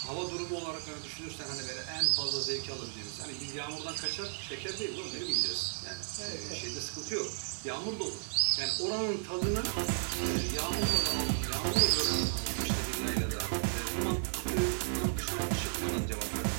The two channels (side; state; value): left; silent; digital silence